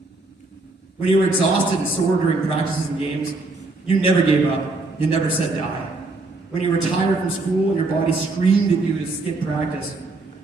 When you were exhausted and sore during practices and games, you never gave up. You never said die. When you were tired from school and your body screamed at you to skip practice,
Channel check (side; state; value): left; quieter; 3.3 dB